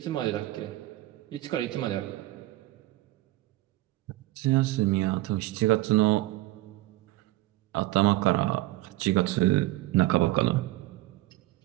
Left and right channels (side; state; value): left; quieter; 17.8 dB